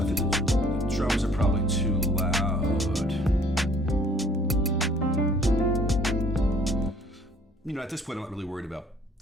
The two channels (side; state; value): both; normal; correlation 0.57